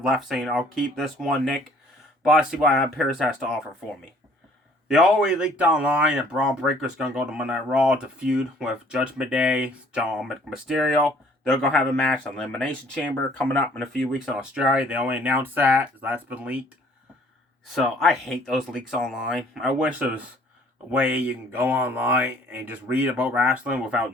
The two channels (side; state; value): both; normal; correlation 0.57